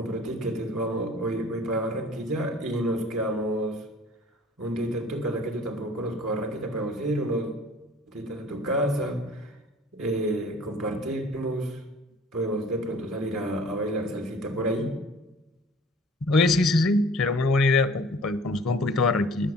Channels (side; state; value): both; normal; correlation 0.49